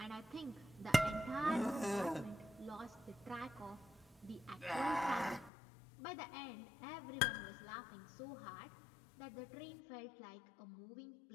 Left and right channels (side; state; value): right; drops out; at 5.5 s